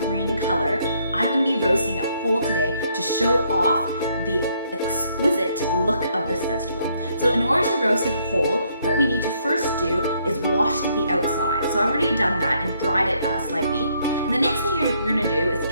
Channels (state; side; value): inverted; both; correlation -0.70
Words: green color, I'm going to be roasting it whole today to show off the exquisite look of this vegetable. So in order to roast it whole, what we need to first do is wash the outside. So I've already done that and dried it slightly. And the next thing you're gonna do is